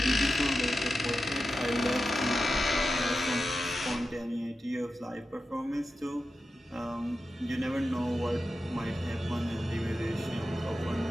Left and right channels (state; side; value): normal; both; correlation 0.91